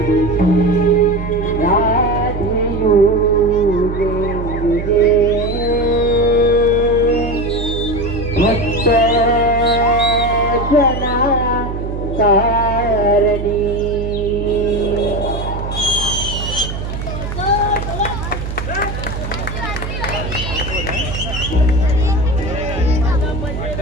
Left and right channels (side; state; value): right; noise; hum, 6 dB below the sound